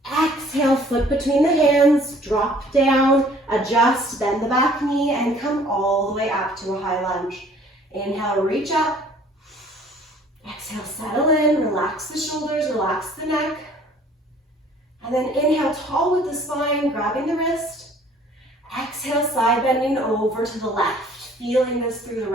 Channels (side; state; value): both; normal; correlation 0.55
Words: Exhale, foot between the hands, drop down, adjust, bend the back knee, and come all the way up to a high lunge. Inhale, reach up. Exhale, settle in, relax the shoulders, relax the neck. And then inhale, tall with the spine, grabbing the wrist. Exhale, side bending over to the left, feeling this through the